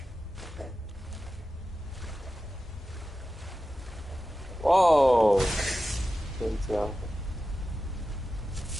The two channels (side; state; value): both; normal; correlation 0.93